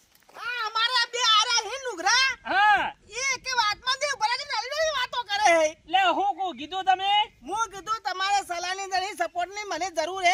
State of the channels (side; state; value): both; identical; correlation 1.00